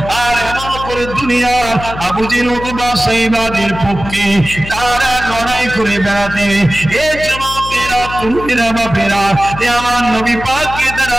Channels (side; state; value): left; noise; hum, 11 dB below the sound